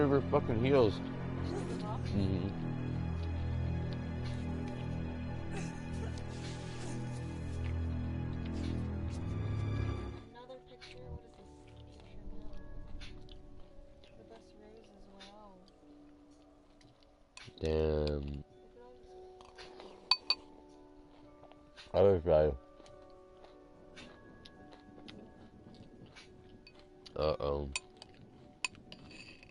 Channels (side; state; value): both; identical; correlation 1.00